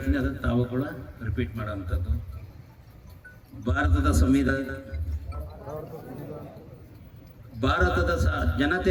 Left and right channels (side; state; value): both; identical; correlation 1.00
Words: ಅದನ್ನು ತಾವು ಕೂಡ ರಿಪೀಟ್ ಮಾಡೋಂಥದ್ದು. ಭಾರತದ ಸಂವಿಧಾನ, ಭಾರತದ